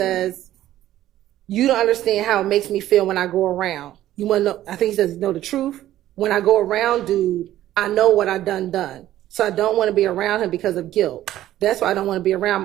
"You don't understand how it makes me feel when I go around. You want to know?" I think he says, "Know the truth. When I go around, dude, I know what I done. So I don't want to be around him because of guilt. That's why I don't want to be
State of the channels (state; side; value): quieter; left; 13.5 dB